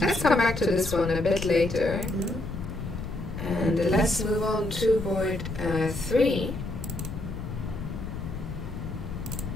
Let's come back to this one a bit later. And let's move on to board 3.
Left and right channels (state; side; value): noise; left; rumble, 7 dB below the sound